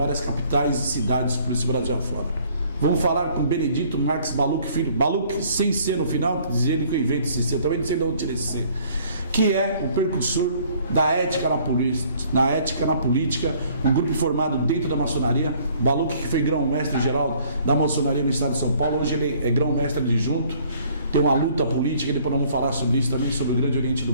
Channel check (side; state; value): both; inverted; correlation -0.59